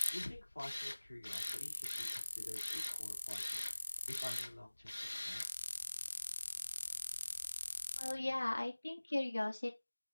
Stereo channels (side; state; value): both; inverted; correlation -1.00